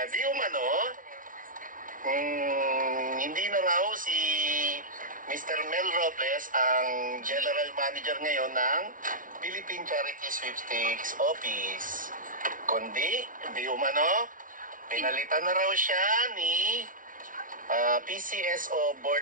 di umano, hindi na raw si Mr. Mel Robles ang General Manager ngayon ng Philippine Charity Sweepstakes Office. Kundi, di umano, pinalitan na raw siya ni PCSO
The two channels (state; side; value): late; left; 0.38 ms